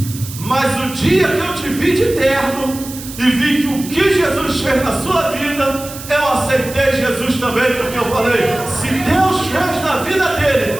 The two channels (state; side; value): noise; right; hiss, 13 dB below the sound